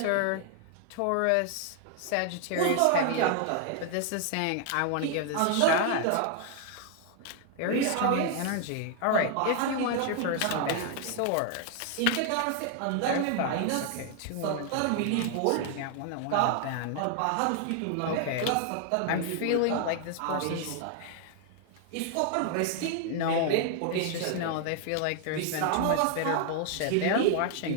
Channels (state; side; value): different; both; correlation 0.00